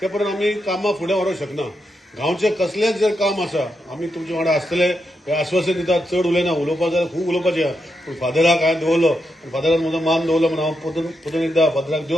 ते पर्यंत आमी कामां फुडें व्हरूंक शकना। गांवचे कसलेंच जर काम आसा आमी तुमचे वांगडा आसतले हे आश्वासन दितात। चड उलयना, उलोवपाक जाल्यार खूब उलोवपाचें आहा, पूण फादराक हांवें दवरलो आनी फादरान म्हजो मान दवरलो म्हणून हांव परतून एकदां फादराक देव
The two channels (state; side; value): normal; both; correlation 0.84